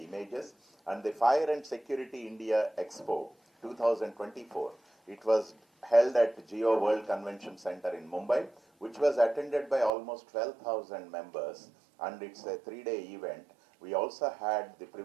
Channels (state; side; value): drops out; left; at 9.9 s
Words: images. And the Fire and Security India Expo 2024, it was held at Geo World Convention Center in Mumbai, which was attended by almost 12,000 members, and it's a 3-day event. We also had the